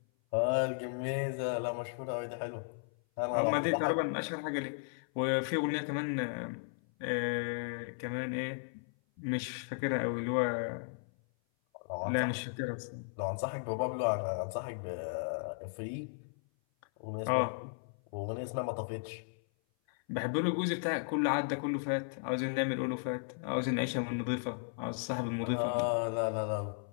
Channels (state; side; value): silent; right; 54 dB below the other